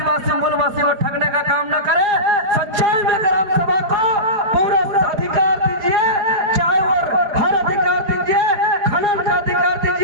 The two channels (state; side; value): late; left; 4.8 ms